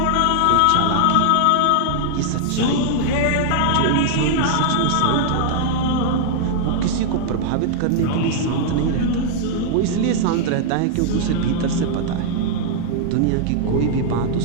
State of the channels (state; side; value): different; both; correlation -0.01